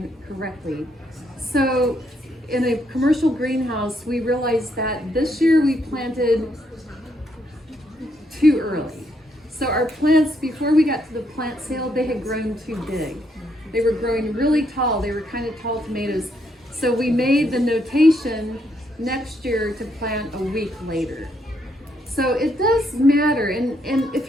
correctly. So in a commercial greenhouse, we realized that this year we planted too early. So our plants, before we got to the plant sale, they had grown too big. They were growing really tall. They were kind of tall tomatoes. So we made the notation next year to plant a week later. So it does matter. And if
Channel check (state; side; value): normal; both; correlation 0.75